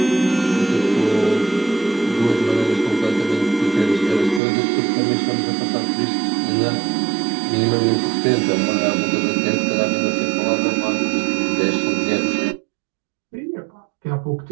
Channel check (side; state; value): left; drops out; at 4.4 s